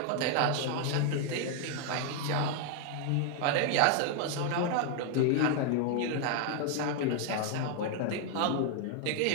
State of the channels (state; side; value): different; both; correlation 0.00